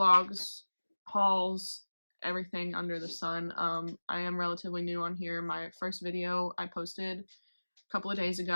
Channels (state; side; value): inverted; both; correlation -1.00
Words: hauls, everything under the sun. I am relatively new on here. My first video I posted a couple of days